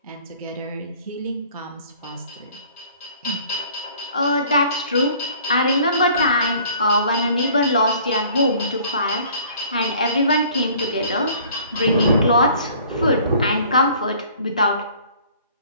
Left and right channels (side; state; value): both; inverted; correlation -0.53